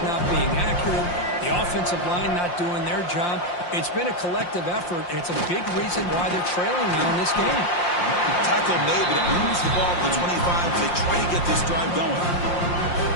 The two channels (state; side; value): late; right; 5.7 ms